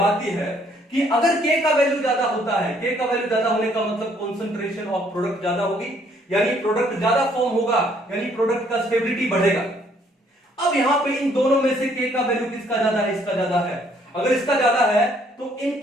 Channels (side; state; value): both; normal; correlation 0.65